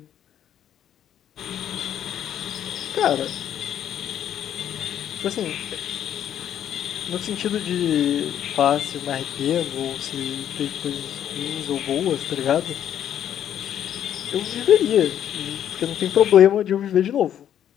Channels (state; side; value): quieter; right; 10.2 dB